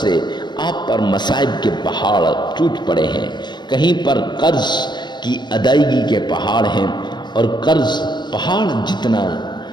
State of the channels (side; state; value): right; late; 0.21 ms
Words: آپ پر مصائب کے پہاڑ ٹوٹ پڑے ہیں، کہیں پر قرض کی ادائیگی کے پہاڑ ہیں اور قرض پہاڑ جتنا